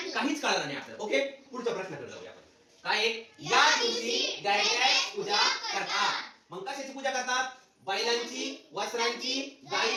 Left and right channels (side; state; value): both; identical; correlation 1.00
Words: काहीच कळणार नाही आपल्याला. ओके पुढच्या प्रश्नाकडे जाऊया आपण. काय या दिवशी डॅश पूजा करतात मग कशाची पूजा करतात बैलांची वस्त्रांची